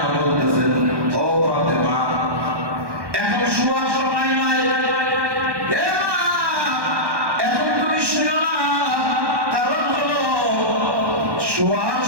বলতেছেন, ও ফাতেমা, এখন শোয়ার সময় নাই, এ মা, এখন তুমি শুয়ো না। কারণ হলো শোয়ার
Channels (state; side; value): late; left; 1.1 ms